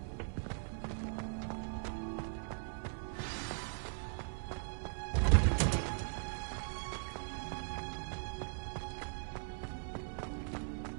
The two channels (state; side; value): silent; left; 51 dB below the other